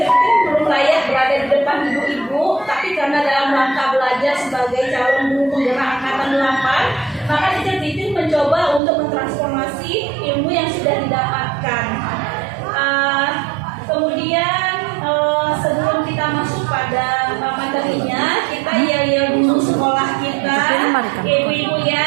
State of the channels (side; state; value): left; drops out; at 8.8 s